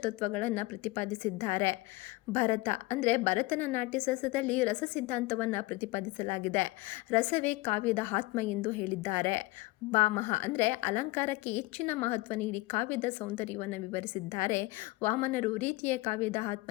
ತತ್ವಗಳನ್ನು ಪ್ರತಿಪಾದಿಸಿದ್ದಾರೆ. ಭರತ ಅಂದರೆ ಭರತನ ನಾಟ್ಯಶಾಸ್ತ್ರದಲ್ಲಿ ರಸ ಸಿದ್ಧಾಂತವನ್ನು ಪ್ರತಿಪಾದಿಸಲಾಗಿದೆ. ರಸವೇ ಕಾವ್ಯದ ಆತ್ಮ ಎಂದು ಹೇಳಿದ್ದಾರೆ. ಭಾಮಹ ಅಂದರೆ ಅಲಂಕಾರಕ್ಕೆ ಹೆಚ್ಚಿನ ಮಹತ್ವ ನೀಡಿ ಕಾವ್ಯದ ಸೌಂದರ್ಯವನ್ನು ವಿವರಿಸಿದ್ದಾರೆ. ವಾಮನರು ರೀತಿಯ ಕಾವ್ಯದ ಆತ್ಮ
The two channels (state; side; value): quieter; right; 21.2 dB